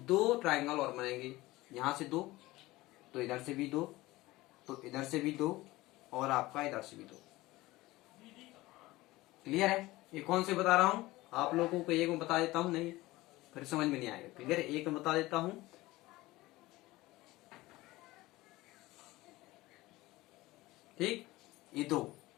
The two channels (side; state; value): right; quieter; 19.0 dB